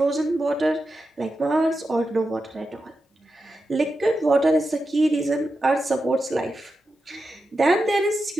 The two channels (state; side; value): normal; both; correlation 0.90